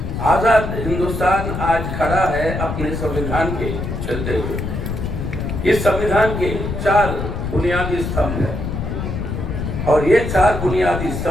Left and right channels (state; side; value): noise; left; rumble, 4 dB below the sound